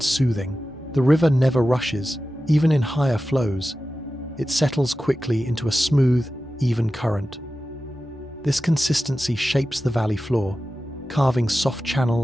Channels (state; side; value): normal; both; correlation 0.94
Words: soothing. The river never rushes, even in higher flows. It settles quickly into a smooth, even current. This consistency shapes the valley floor, carving soft